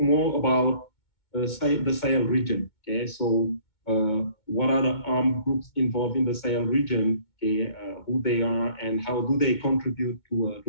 more about the Sahel region. Okay, so what are the armed groups involved in the Sahel region? Okay, who they are and how do they contribute to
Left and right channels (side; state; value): right; late; 2.2 ms